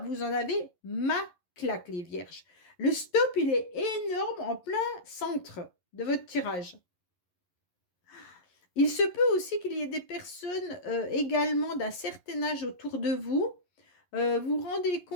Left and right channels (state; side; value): late; right; 11 ms